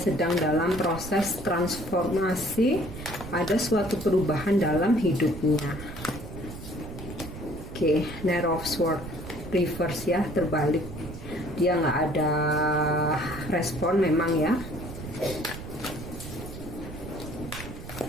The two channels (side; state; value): right; noise; rumble, 11 dB below the sound